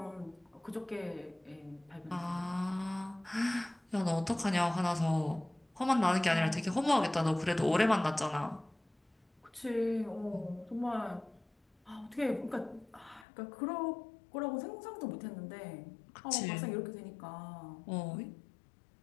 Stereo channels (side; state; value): right; drops out; at 13.2 s